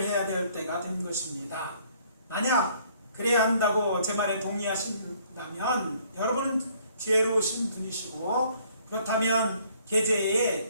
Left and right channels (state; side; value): inverted; both; correlation -0.62